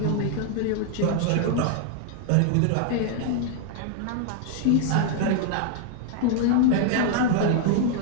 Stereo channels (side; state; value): both; different; correlation 0.00